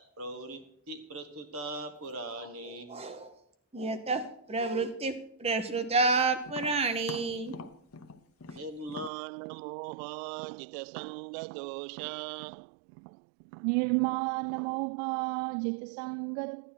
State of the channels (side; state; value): left; drops out; at 9.1 s